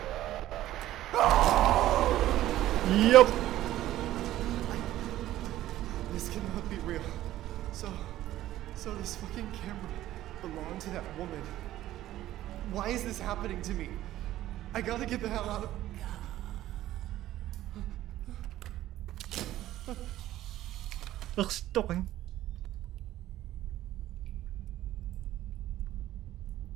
Yup. This cannot be real. So this fucking camera belonged to that woman. Why is this happening to me? I gotta get the hell out of... Stopping.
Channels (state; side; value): quieter; left; 14.1 dB